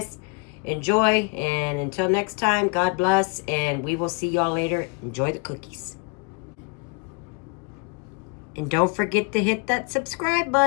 Enjoy, and until next time, God bless, and we will see y'all later. Enjoy the cookies. And don't forget to hit that subscribe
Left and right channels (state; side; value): quieter; right; 33.1 dB